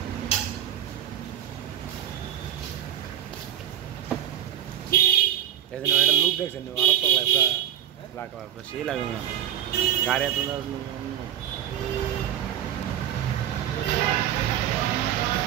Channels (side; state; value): left; quieter; 10.9 dB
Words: এদিন একটা লুক দেখছেন আরো তো লাগা সেই লাগে না গাড়ি এত